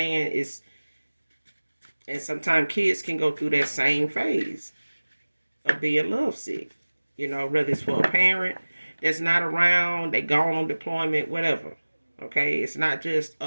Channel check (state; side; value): inverted; both; correlation -1.00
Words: And sometimes kids can go through that same phase of being lovesick. Whether it's for a parent that's not around, they gone on deployment, whatever. Okay, it's not just a